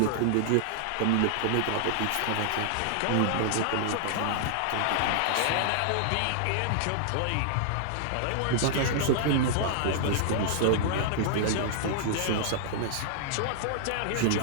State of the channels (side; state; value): both; different; correlation -0.01